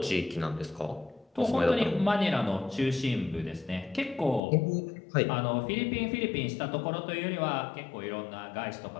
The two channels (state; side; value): drops out; right; at 4.4 s